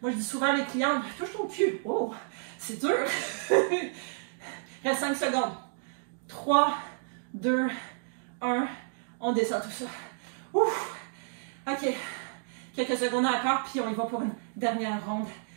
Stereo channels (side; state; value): left; silent; digital silence